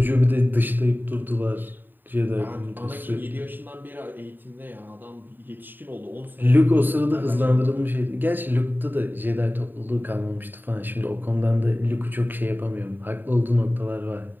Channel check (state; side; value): late; left; 0.092 ms